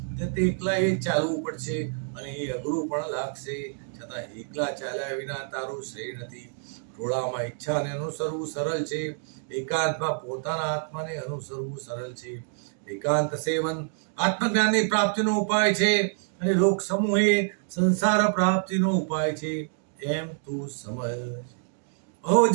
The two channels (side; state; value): left; silent; digital silence